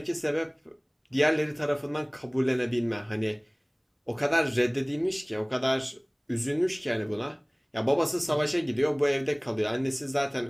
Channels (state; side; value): identical; both; correlation 1.00